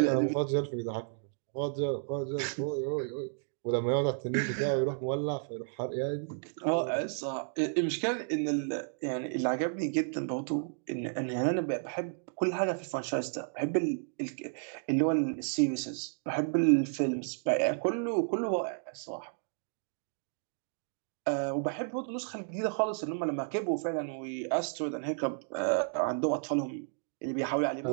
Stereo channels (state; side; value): silent; left; digital silence